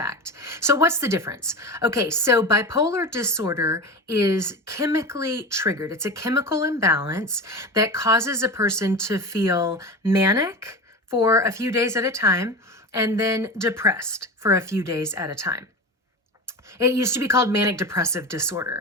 So what's the difference? Okay, so bipolar disorder is chemically triggered. It's a chemical imbalance that causes a person to feel manic for a few days at a time and then depressed for a few days at a time. It used to be called manic depressive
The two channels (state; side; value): normal; both; correlation 0.27